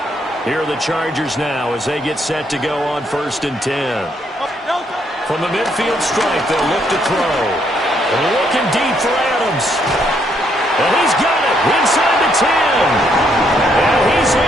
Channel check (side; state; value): both; normal; correlation 0.72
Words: Here are the Chargers now as they get set to go on 1st and 10. From the midfield stripe, they'll look to throw. Looking deep for Adams. And he's got it inside the 10. And he's